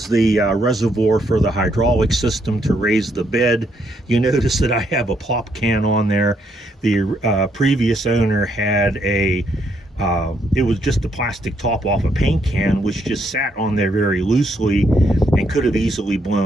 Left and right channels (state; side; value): normal; both; correlation 0.74